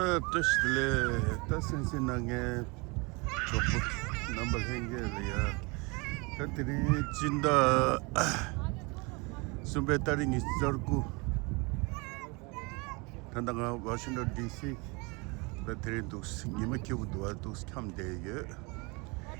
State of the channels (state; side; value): quieter; left; 28.3 dB